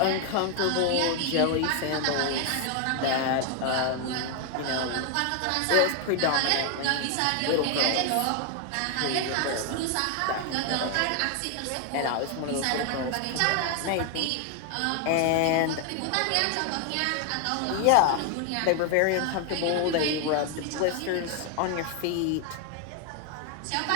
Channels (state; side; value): different; both; correlation 0.00